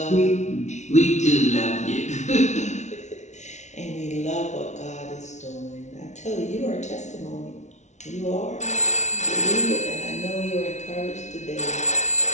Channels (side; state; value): right; late; 0.33 ms